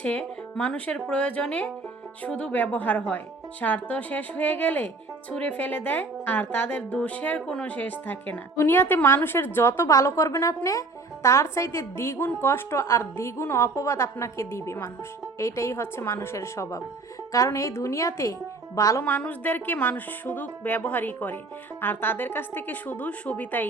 মানুষের প্রয়োজনে শুধু ব্যবহার হয়, স্বার্থ শেষ হয়ে গেলে ছুঁড়ে ফেলে দেয়, আর তাদের দোষের কোনো শেষ থাকে না। দুনিয়াতে মানুষের যত ভালো করবেন আপনি, তার চাইতে দ্বিগুণ কষ্ট আর দ্বিগুণ অপবাদ আপনাকে দিবে মানুষ। এইটাই হচ্ছে মানুষের স্বভাব। কারণ এই দুনিয়াতে ভালো মানুষদেরকে মানুষ শুধু ব্যবহারই করে, আর তাদের কাছ থেকে শুধু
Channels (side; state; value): left; quieter; 3.6 dB